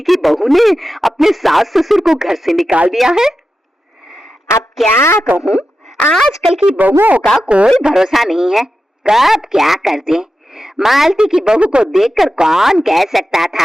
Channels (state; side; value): normal; both; correlation 0.91